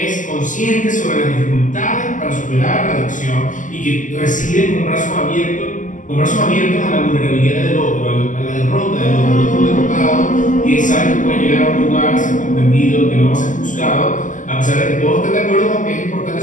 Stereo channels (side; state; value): right; late; 0.37 ms